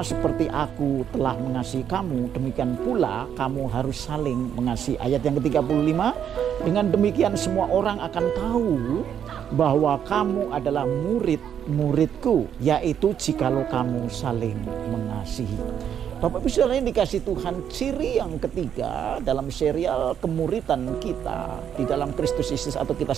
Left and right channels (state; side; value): quieter; left; 8.9 dB